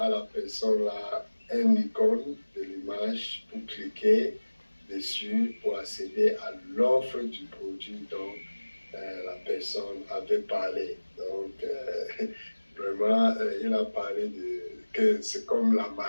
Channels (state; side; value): inverted; both; correlation -1.00